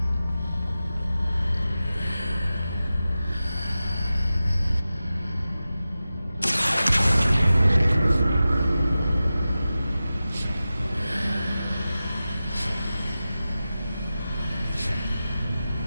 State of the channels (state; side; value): inverted; both; correlation -0.94